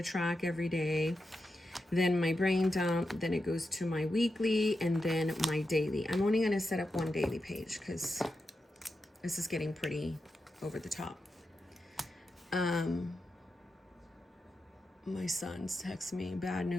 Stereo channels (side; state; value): both; normal; correlation 0.89